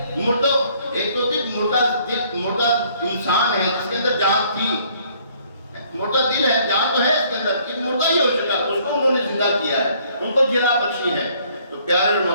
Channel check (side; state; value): both; inverted; correlation -0.62